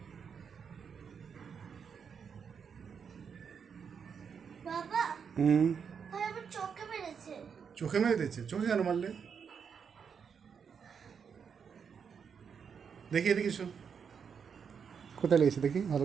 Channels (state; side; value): quieter; left; 6.7 dB